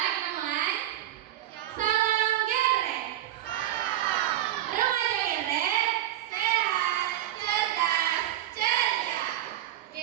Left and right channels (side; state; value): left; quieter; 13.2 dB